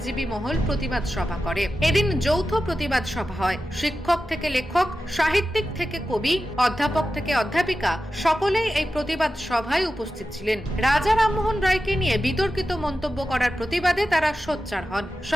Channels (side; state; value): both; normal; correlation 0.93